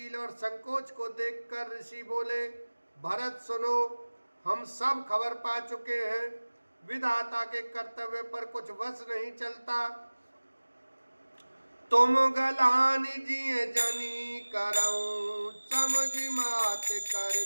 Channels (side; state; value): both; inverted; correlation -1.00